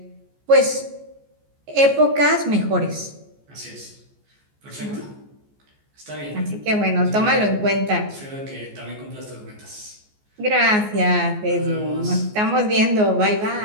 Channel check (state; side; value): late; left; 14 ms